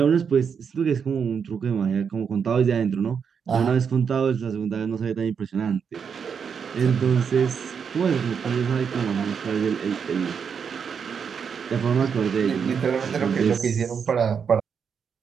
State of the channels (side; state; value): left; quieter; 6.7 dB